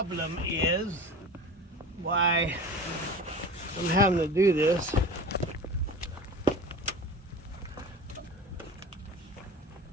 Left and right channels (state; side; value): normal; both; correlation 0.35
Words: is why I'm having to do this.